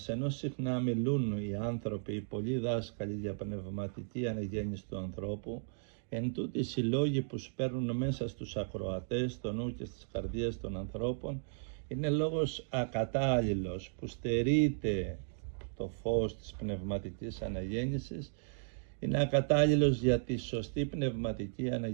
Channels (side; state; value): left; silent; digital silence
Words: ενώ συχνά μιλούν οι άνθρωποι, οι πολλοί δάσκαλοι για πνευματική αναγέννηση του ανθρώπου, εν τούτοις οι λόγοι που σπέρνουν μέσα στους ακροατές, στο νου και στις καρδίες των ανθρώπων, είναι λόγος ακατάλληλος που στερείται το φως της πνευματικής αναγέννησης, είναι ακατάλληλος για τη σωστή πνευματική